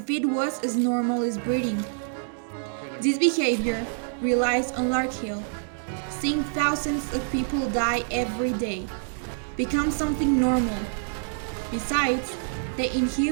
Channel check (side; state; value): left; silent; digital silence